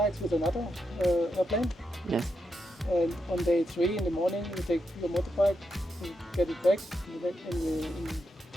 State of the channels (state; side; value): normal; both; correlation 0.84